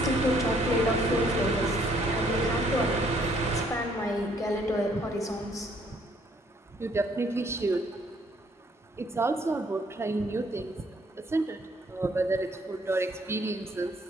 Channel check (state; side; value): normal; both; correlation 0.65